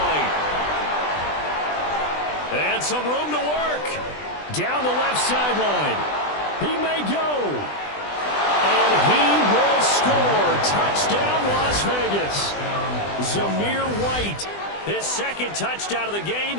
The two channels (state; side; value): late; right; 20 ms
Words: And some room to work. Down the left sideline. He may go. And he will score. Touchdown, Las Vegas. Zamir White, his 2nd touchdown of the game,